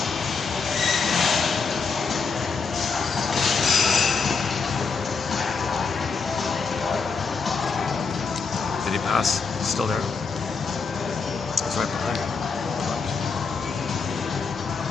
Did he pass? He's still there. He's right behind me.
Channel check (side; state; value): right; quieter; 5.0 dB